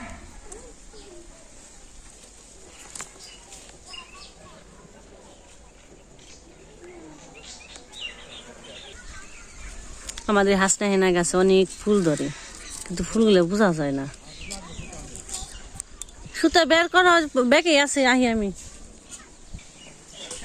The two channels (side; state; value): both; identical; correlation 1.00